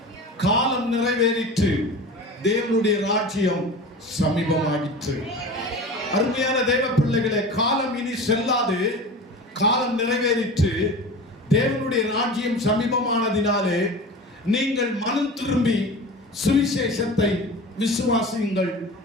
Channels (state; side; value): normal; both; correlation 0.34